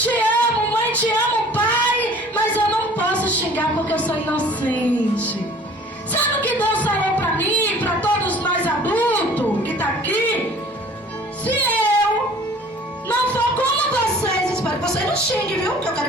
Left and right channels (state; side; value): normal; both; correlation 0.49